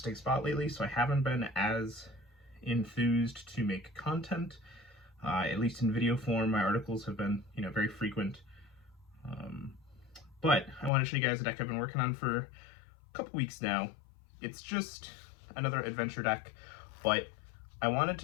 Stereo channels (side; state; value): right; drops out; at 10.9 s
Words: spot lately. So I haven't been as enthused to make content, at least in video form. My articles have been very frequent, but I want to show you guys a deck I've been working on for a couple weeks now. It's just another adventure deck, but I wanted